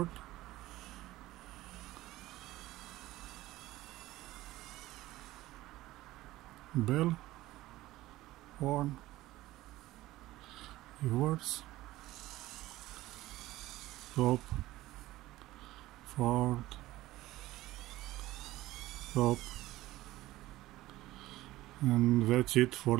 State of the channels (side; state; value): left; quieter; 16.8 dB